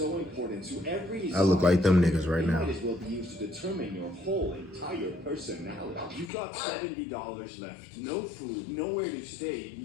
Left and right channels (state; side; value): drops out; right; at 6.3 s